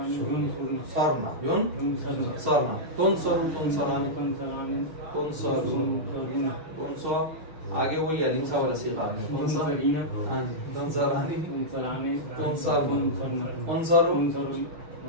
युनसरना, तुनसरु, तुनसरानी, तुनसरुन, तुनसर, आगे वही अलीम सा वाला सीखा है। कौन सा? हाँ जी, तुनसरानी,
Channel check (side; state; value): left; late; 6.4 ms